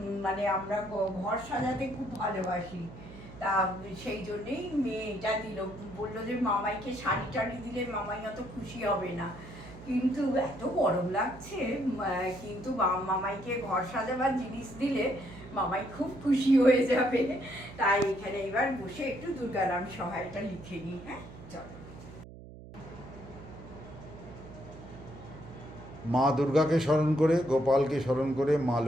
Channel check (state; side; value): noise; right; hum, 16 dB below the sound